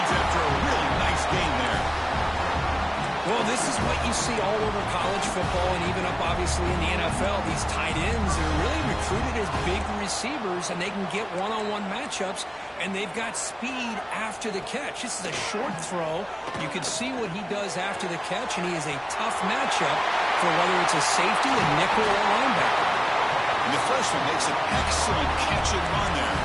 after a really nice gain there. Well, this is what you see all over college football and even up, obviously, in the NFL. These tight ends are really recruited as big receivers, and they can get one-on-one matchups, and they've got speed after the catch. This is a short throw. You can see what he does after the catch, and he is a tough matchup for whether it's a safety, a nickel, or a linebacker. And the freshman makes an excellent catch and run there.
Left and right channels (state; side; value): identical; both; correlation 1.00